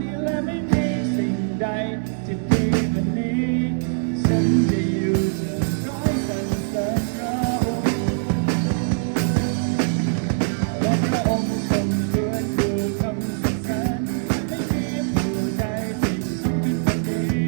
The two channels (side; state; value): left; silent; digital silence